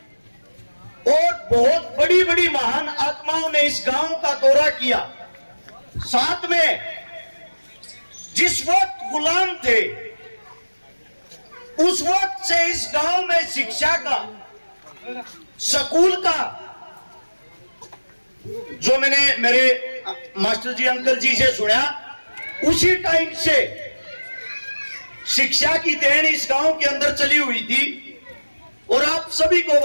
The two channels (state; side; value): inverted; both; correlation -1.00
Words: और बहुत बड़ी बड़ी महान आत्माओं ने इस गांव का दौरा किया। साथ में जिस वक्त गुलाम थे उस वक्त से इस गांव में शिक्षा का, स्कूल का, जो मैंने मेरे मास्टर जी अंकल जी से सुना, उसी टाइम से शिक्षा की देन इस गांव के अंदर चली हुई थी। और आप सभी को